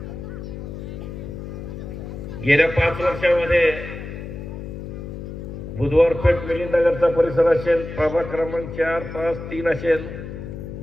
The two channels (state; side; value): noise; left; hum, 9 dB below the sound